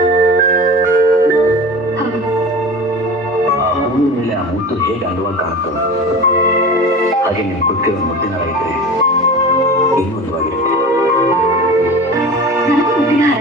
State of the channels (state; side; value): normal; both; correlation 0.34